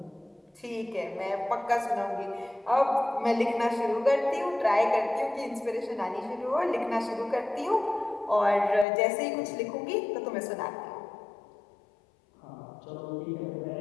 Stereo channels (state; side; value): drops out; right; at 8.8 s